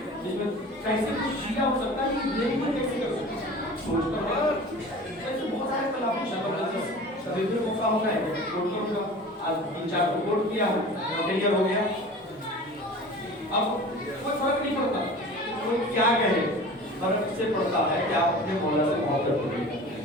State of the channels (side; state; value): both; normal; correlation 0.39